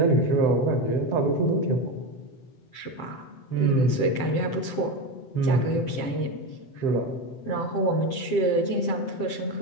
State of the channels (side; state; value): right; late; 7.6 ms